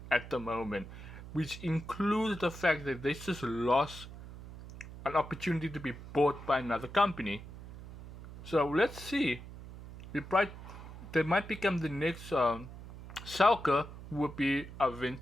at the moment, which includes the fact that they just lost an opportunity to be bought by another company. So let's see. They might become the next Schalke, would be a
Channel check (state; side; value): noise; right; hum, 14 dB below the sound